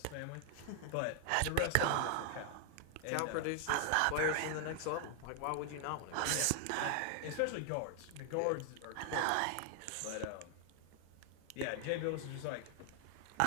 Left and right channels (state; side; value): different; both; correlation 0.00